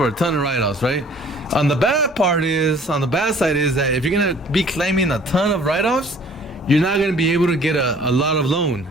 a ton of write-offs, right? On the bad side is that if you're going to be claiming a ton of write-offs, you're not going to be able to get a lot of loan.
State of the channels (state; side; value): normal; both; correlation 0.53